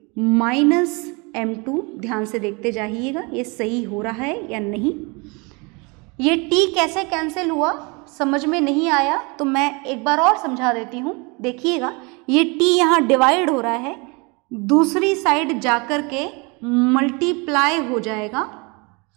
minus m2। ध्यान से देखते जाइएगा ये सही हो रहा है या नहीं। ये t कैसे कैंसिल हुआ समझ में नहीं आया तो मैं एक बार और समझा देती हूँ। देखिएगा, ये t यहाँ डिवाइड हो रहा है, दूसरी साइड जाकर के मल्टीप्लाई हो जाएगा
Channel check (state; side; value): quieter; left; 29.1 dB